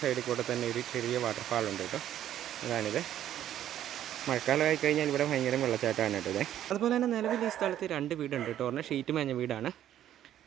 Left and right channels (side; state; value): left; quieter; 11.5 dB